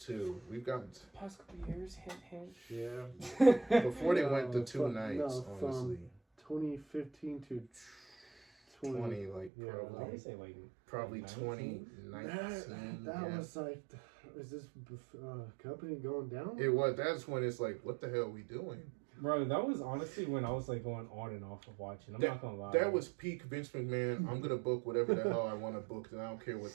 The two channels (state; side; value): drops out; left; at 9.5 s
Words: We've gotten Past couple years, hint, hint. Yeah. before they went to No, 2 from- nights. no, from- Honestly, 2015 to 20 like Yeah, I would probably say like probably 19. 2019. That yeah. was like, is this company going down? It was. That's when it's like, what the hell are we doing? Bro, that was honestly when I was like going on and off of watching. I'm not gonna lie. That was peak Vince McMahon. I'm gonna book whatever the hell I want to book, and I don't care